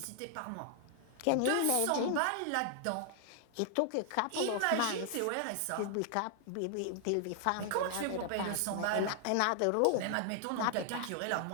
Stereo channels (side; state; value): both; different; correlation 0.00